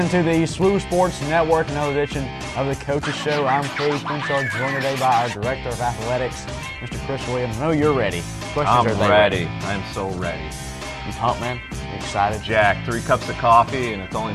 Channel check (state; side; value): identical; both; correlation 1.00